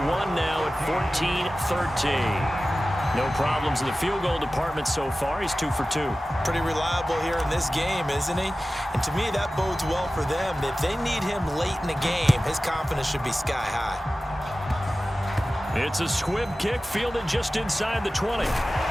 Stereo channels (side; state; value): both; normal; correlation 0.96